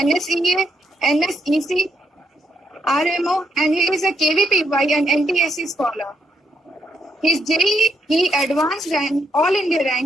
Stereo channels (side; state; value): both; normal; correlation 0.77